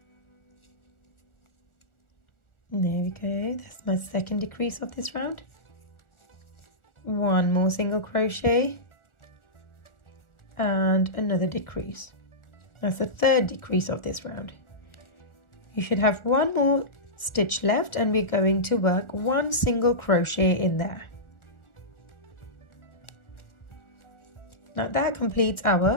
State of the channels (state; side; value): late; right; 1.4 ms